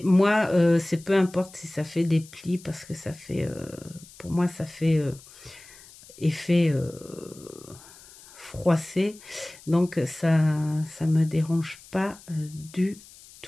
moi c'est peu importe si ça fait des plis parce que ça fait pour moi ça fait effet froissé, donc ça me dérange pas du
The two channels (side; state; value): left; noise; hiss, 21 dB below the sound